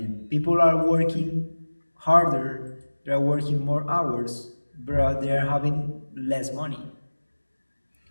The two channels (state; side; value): inverted; both; correlation -1.00